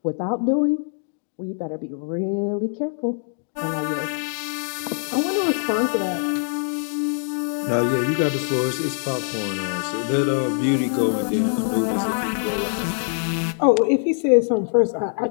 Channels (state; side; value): silent; right; digital silence